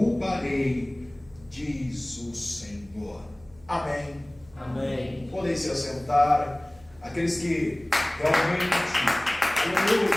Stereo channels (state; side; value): noise; right; hum, 27 dB below the sound